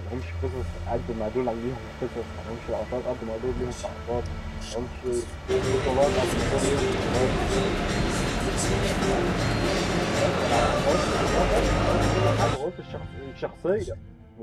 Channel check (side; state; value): both; identical; correlation 1.00